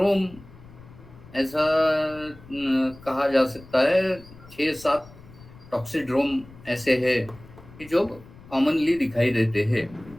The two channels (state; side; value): noise; left; rumble, 21 dB below the sound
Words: ऐसा कहा जा सकता है, 6-7 टॉक्सिड्रोम ऐसे है कि जो कॉमनली दिखाई देते हैं।